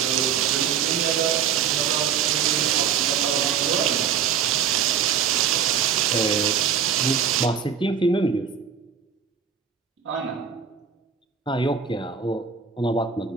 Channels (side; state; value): left; quieter; 7.5 dB